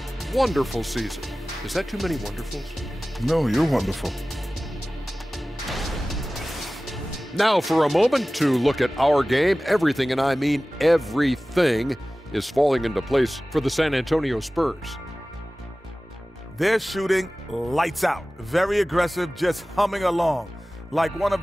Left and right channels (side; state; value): both; normal; correlation 0.97